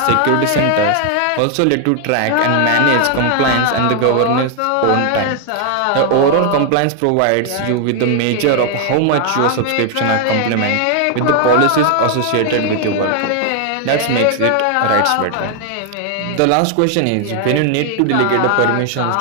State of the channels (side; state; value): both; different; correlation 0.00